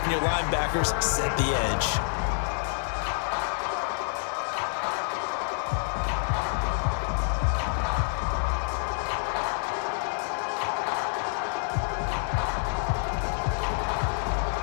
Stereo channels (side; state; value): right; silent; 59 dB below the other